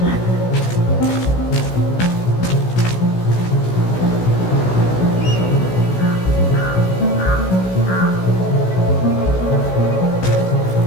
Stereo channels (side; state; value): right; late; 16 ms